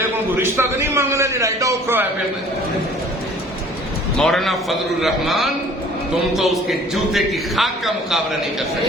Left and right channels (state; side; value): normal; both; correlation 0.51